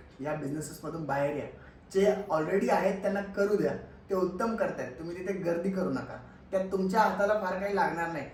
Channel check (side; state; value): both; identical; correlation 1.00